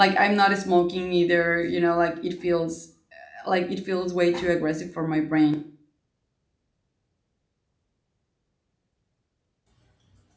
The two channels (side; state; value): both; identical; correlation 1.00